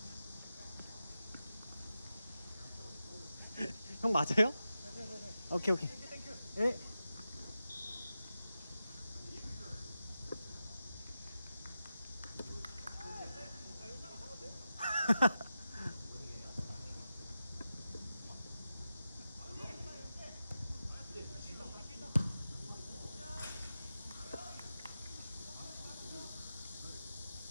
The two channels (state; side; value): inverted; both; correlation -0.91